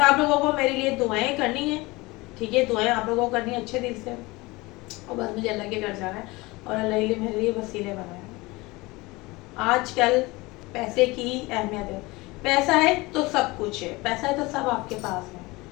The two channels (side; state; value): right; quieter; 22.6 dB